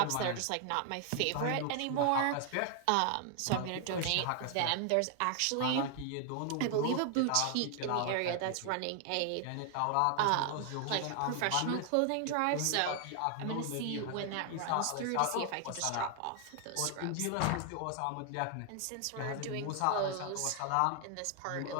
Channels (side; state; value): both; different; correlation 0.00